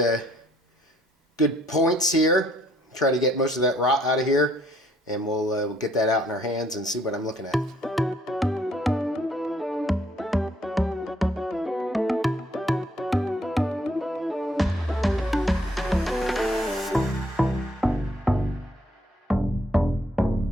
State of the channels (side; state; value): both; normal; correlation 0.66